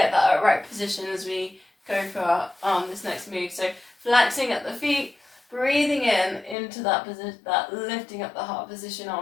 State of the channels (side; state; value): right; drops out; at 6.6 s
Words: that right position as we go for this next move. So flexing at the feet, breathing in into that position, that lifting up the heart position,